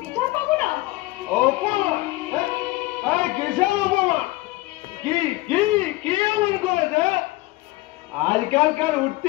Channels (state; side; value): quieter; right; 20.2 dB